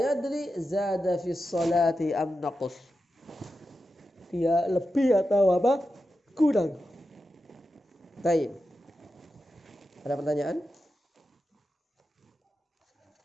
zada fi salati am naqus. Dia lebih atau apa? Kurang. Baik. Ada pertanyaan?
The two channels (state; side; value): normal; both; correlation 0.90